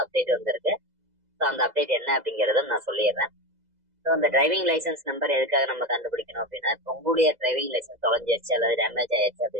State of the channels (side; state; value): left; late; 2.0 ms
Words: அப்டேட் வந்திருக்கு. ஸோ அந்த அப்டேட் என்ன அப்படிங்கறத நான் சொல்லிடுறேன். ஸோ அந்த டிரைவிங் லைசன்ஸ் நம்பர் எதுக்காக நம்ம கண்டுபிடிக்கணும் அப்படின்னா, இப்போ உங்களுடைய டிரைவிங் லைசன்ஸ் தொலைஞ்சிருச்சு அல்லது டேமேஜ் ஆயிடுச்சு